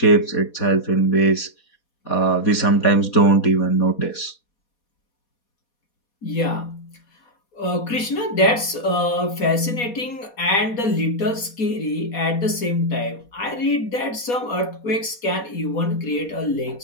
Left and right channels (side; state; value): right; late; 4.2 ms